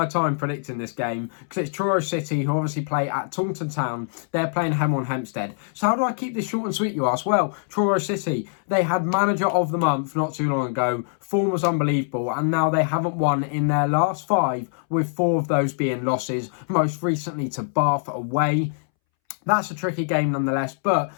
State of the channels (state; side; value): silent; right; 63 dB below the other